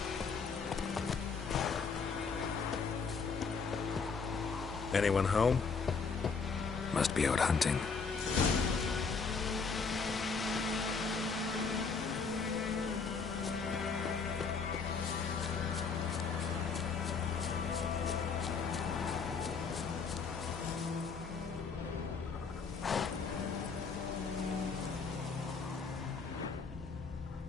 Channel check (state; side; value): quieter; right; 5.1 dB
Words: Anyone home? Must be out hunting.